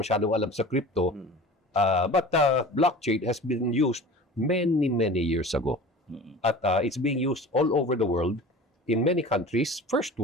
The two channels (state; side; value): normal; both; correlation 0.38